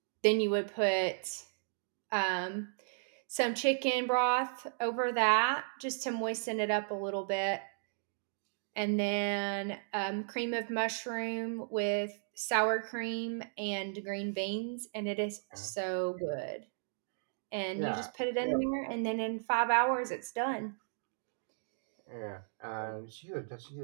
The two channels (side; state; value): left; silent; digital silence